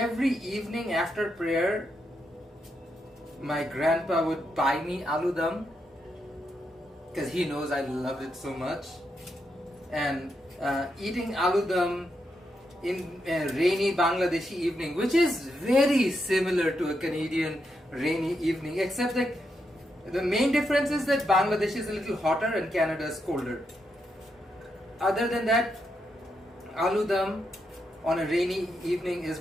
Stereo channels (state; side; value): normal; both; correlation 0.82